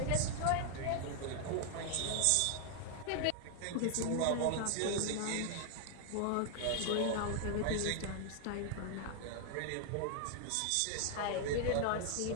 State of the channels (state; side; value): different; both; correlation 0.00